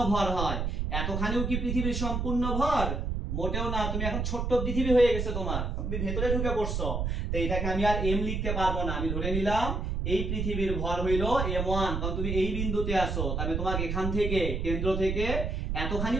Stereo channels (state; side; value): noise; right; rumble, 1 dB below the sound